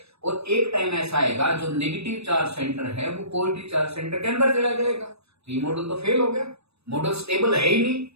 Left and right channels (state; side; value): late; left; 0.79 ms